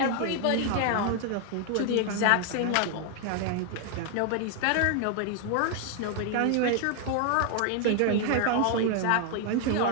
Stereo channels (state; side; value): different; both; correlation 0.00